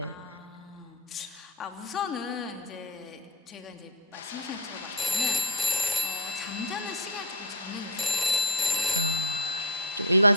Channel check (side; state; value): both; normal; correlation 0.11